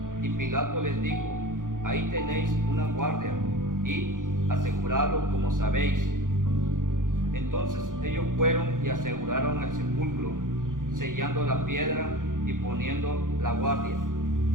Y Pilato les dijo: ahí tenéis una guardia, y aseguradlo como sabéis. Entonces ellos fueron y aseguraron el sepulcro, sellando la piedra y poniendo la guardia.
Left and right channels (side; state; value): left; late; 0.89 ms